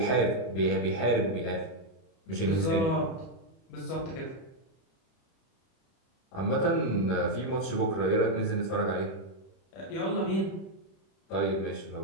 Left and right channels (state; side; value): late; right; 31 ms